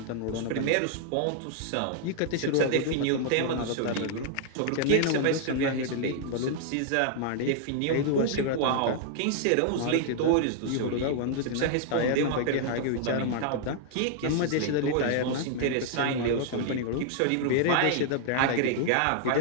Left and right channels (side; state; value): both; different; correlation 0.00